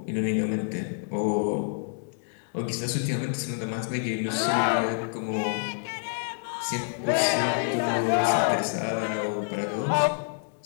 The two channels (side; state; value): right; silent; digital silence